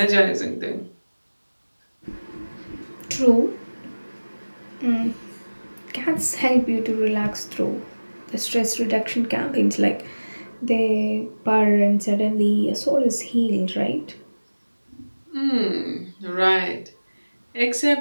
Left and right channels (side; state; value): both; inverted; correlation -1.00